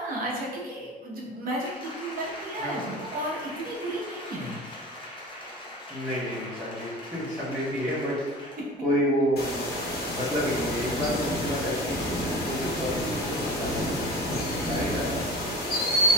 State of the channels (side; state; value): both; normal; correlation 0.36